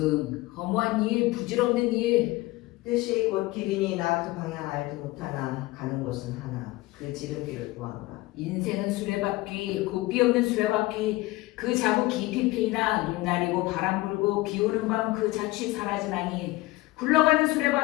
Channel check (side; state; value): right; quieter; 19.5 dB